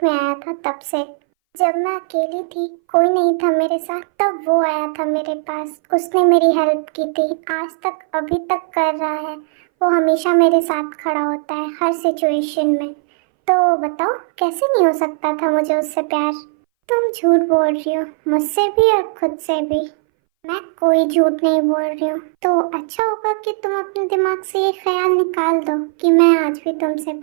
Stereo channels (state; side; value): silent; left; 63 dB below the other